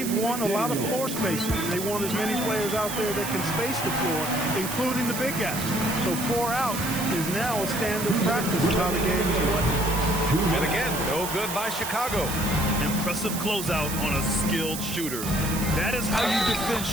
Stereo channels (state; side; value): noise; right; hiss, 6 dB below the sound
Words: want a lot of floor spacing. They want as many players out there that can space the floor, including the big guys. So 4 out is now a standard practice of how the game is played. And again, no good by Chicago. Impressive closeout on a skilled shooter. That is how you defend